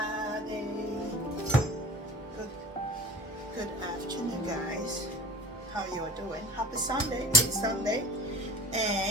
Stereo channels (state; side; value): normal; both; correlation 0.42